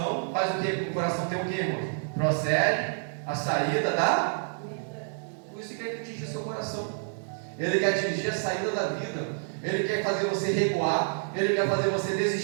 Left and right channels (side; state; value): left; silent; digital silence